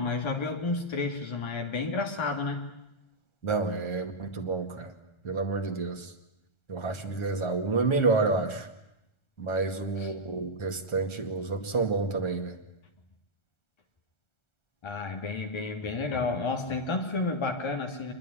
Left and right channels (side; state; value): right; late; 1.3 ms